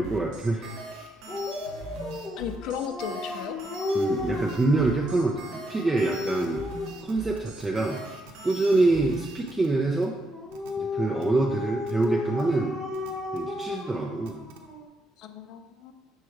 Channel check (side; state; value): both; normal; correlation 0.80